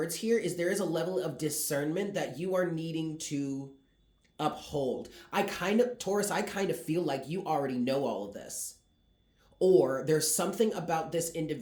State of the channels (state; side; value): identical; both; correlation 1.00